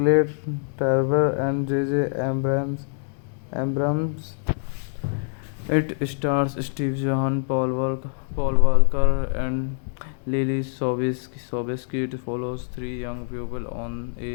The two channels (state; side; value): silent; right; 60 dB below the other